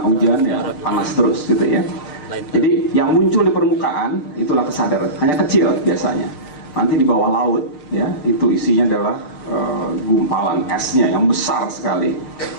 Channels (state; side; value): late; right; 6.7 ms